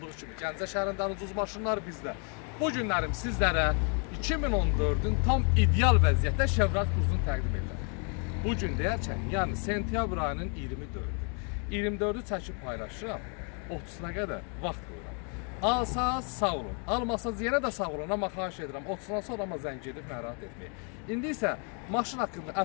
kimi Gəncə şəhərindən ucuz maşınlar bizdə. Bu günlərim sizlərə 2014-ün tam ideal vəziyyətdə Chevrolet Cruze'unu təqdim edirəm. Bu gün deyərkən, yəni sentyabr ayının 24-ü çəkib paylaşıram, 30-una qədər vaxt qoyuram. Alsaz sağ olun, almasaz yenə də sağ olun, amma xahiş edirəm, 30-dan sonra amma zəng edib narahat etməyin. İndi isə maşın haqqında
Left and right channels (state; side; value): quieter; right; 38.7 dB